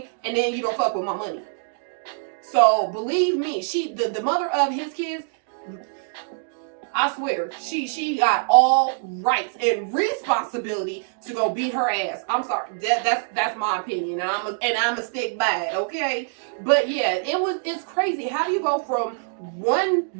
and then you don't fuck with my money. So believe me, the mother of his kids, I swear, she got all rights and responsibility to go beat her ass. I'm sorry, that's my opinion, and I'm a stick by it, okay? But yeah, it's crazy. How do you go from one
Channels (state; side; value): silent; left; digital silence